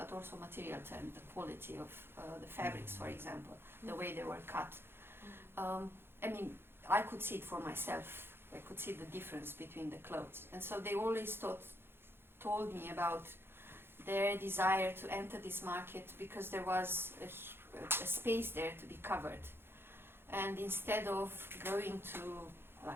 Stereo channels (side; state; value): left; late; 0.11 ms